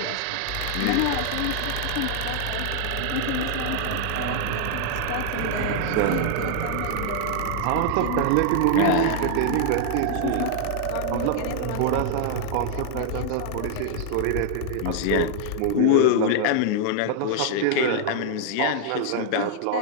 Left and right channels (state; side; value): different; both; correlation 0.00